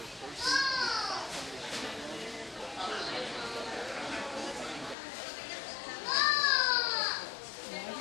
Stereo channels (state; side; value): drops out; right; at 5.0 s